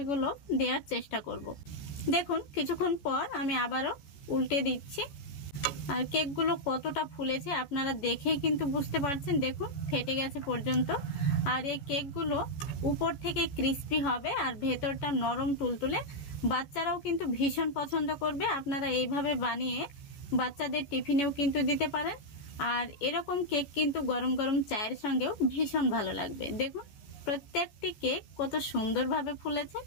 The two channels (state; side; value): late; right; 14 ms